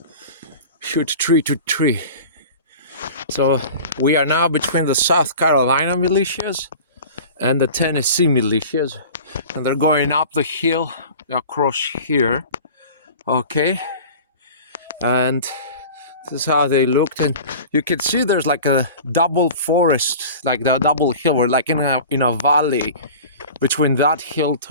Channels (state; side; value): inverted; both; correlation -0.38